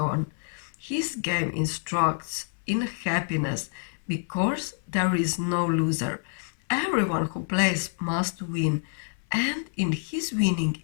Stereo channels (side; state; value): right; silent; 60 dB below the other